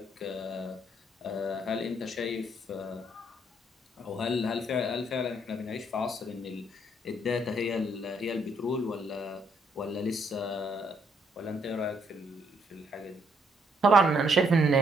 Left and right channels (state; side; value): normal; both; correlation 0.70